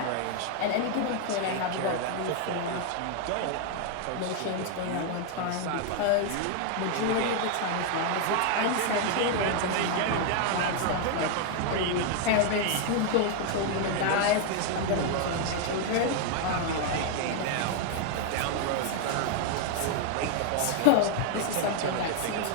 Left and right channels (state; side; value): different; both; correlation 0.00